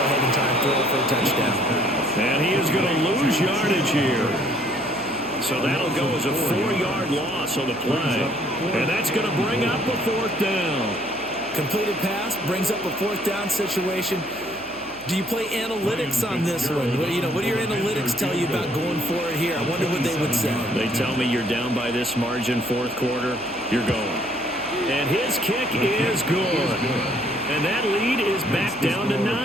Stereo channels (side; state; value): right; noise; hum, 24 dB below the sound